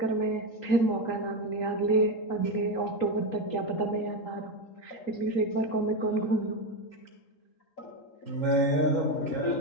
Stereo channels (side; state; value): right; late; 3.8 ms